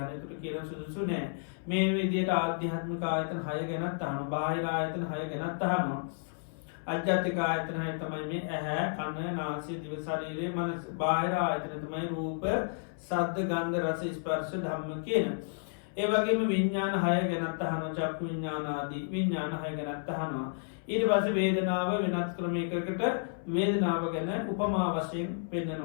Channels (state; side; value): silent; right; 57 dB below the other